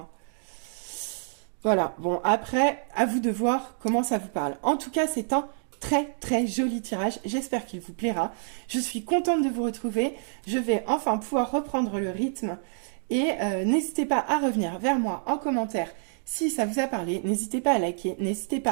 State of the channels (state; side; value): silent; left; digital silence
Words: Voilà, bon, après, à vous de voir comment ça vous parle. En tout cas, c'est un très très joli tirage, j'espère qu'il vous plaira. Je suis contente de vous retrouver, je vais enfin pouvoir reprendre le rythme. Et n'hésitez pas à revenir vers moi en commentaire si ça vous a parlé. N'hésitez pas à liker, n'hésitez